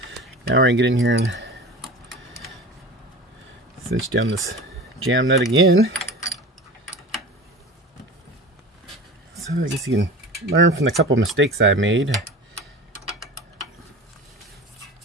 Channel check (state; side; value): normal; both; correlation 0.34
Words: Now we're going to get in here and cinch down this jam nut again. So I guess you can learn from the couple mistakes I made.